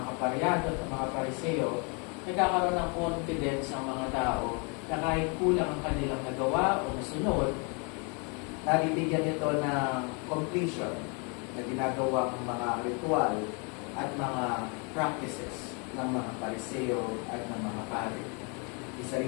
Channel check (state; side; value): quieter; right; 34.2 dB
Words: kaparyado at ng mga Pariseo, nagkakaroon ng confidence ang mga tao na kahit kulang ang kanilang nagawa o nasunod, nabibigyan ito ng completion na ginagawang mga ritual at mga practices ng mga Pariseo at ng mga pari. Isa